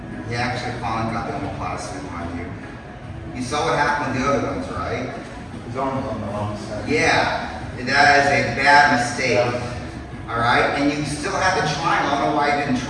He actually finally got the omoplata suit on you. You saw what happened with the other ones, right? his arm's on the wrong side. Yeah, that is a bad mistake. All right, and you still had the triangle. I don't know why you didn't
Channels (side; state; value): both; identical; correlation 1.00